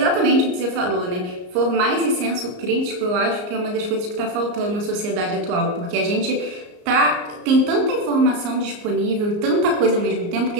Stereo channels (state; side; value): late; left; 34 ms